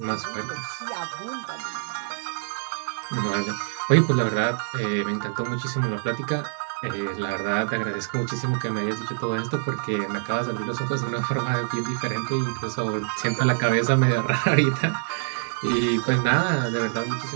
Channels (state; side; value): silent; left; digital silence